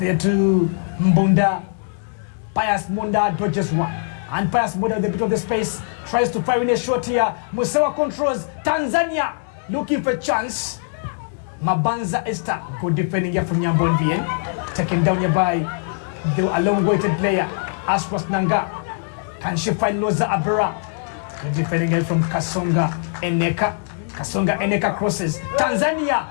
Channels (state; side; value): silent; right; 65 dB below the other